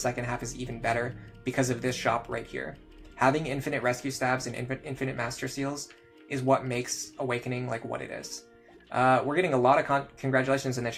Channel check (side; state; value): both; identical; correlation 1.00